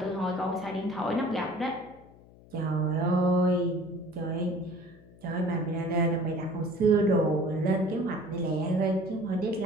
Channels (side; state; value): left; noise; hum, 24 dB below the sound